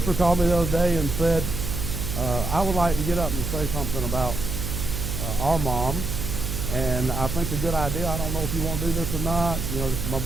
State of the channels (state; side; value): noise; right; hum, 4 dB below the sound